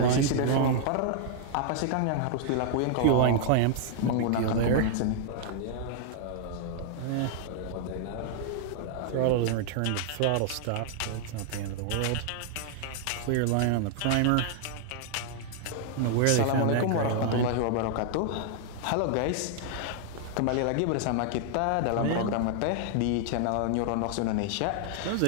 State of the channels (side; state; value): both; different; correlation -0.01